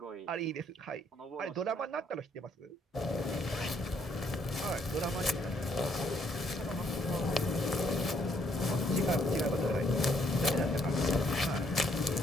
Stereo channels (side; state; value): both; normal; correlation 0.69